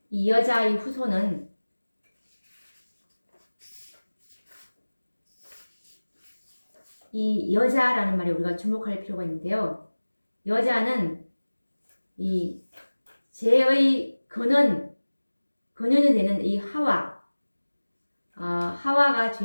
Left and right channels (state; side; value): inverted; both; correlation -1.00